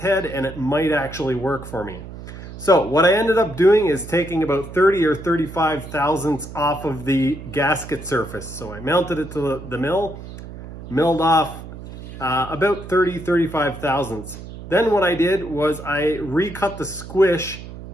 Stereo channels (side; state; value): right; noise; hum, 13 dB below the sound